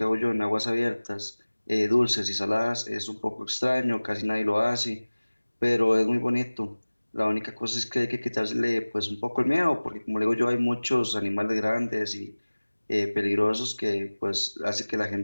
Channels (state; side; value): inverted; both; correlation -1.00